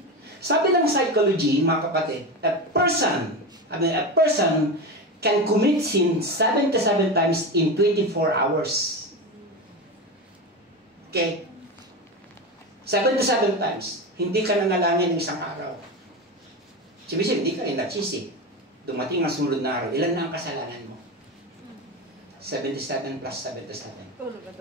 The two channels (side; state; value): both; normal; correlation 0.21